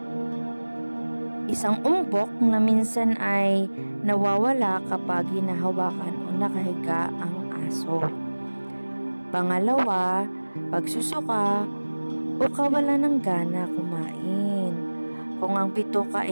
Isang umbok na minsan ay nawawala kapag hinahawakan o nakahiga ang aso. Pangalawa, pagsusuka o kawalan ng gana kumain kung ang bituka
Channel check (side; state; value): both; inverted; correlation -1.00